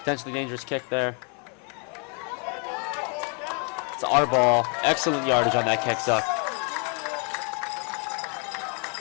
dangerous kick there. It's our ball. Excellent yardage on that kick, Zuck.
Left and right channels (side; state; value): right; quieter; 38.0 dB